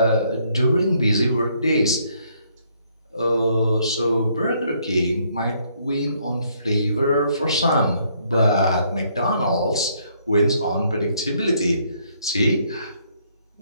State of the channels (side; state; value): both; inverted; correlation -0.69